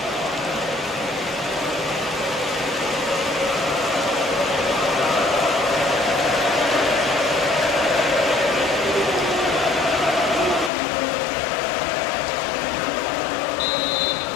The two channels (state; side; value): drops out; right; at 10.7 s